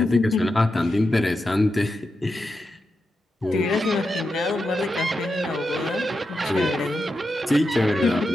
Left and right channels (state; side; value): normal; both; correlation 0.88